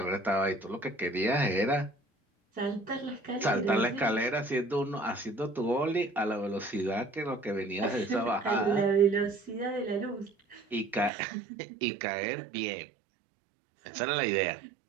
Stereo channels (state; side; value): drops out; left; at 11.1 s